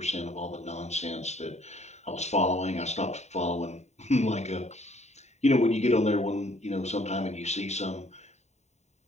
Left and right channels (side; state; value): right; late; 0.32 ms